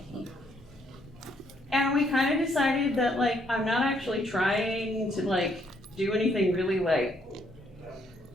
And we kind of decided that I'm not actually trying to do anything really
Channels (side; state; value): both; normal; correlation 0.71